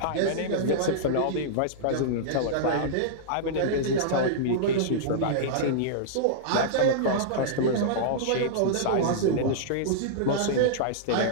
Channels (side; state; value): both; different; correlation -0.02